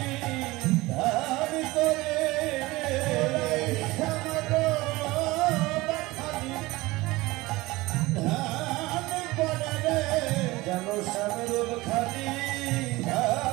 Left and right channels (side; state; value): left; quieter; 20.6 dB